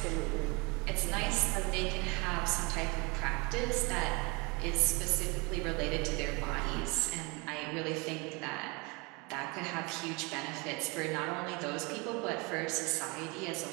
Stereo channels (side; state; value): left; quieter; 28.2 dB